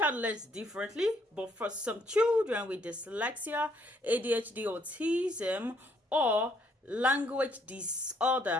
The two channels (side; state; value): both; normal; correlation 0.69